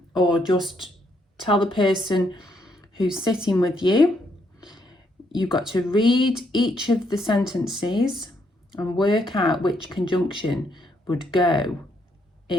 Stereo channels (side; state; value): both; normal; correlation 0.74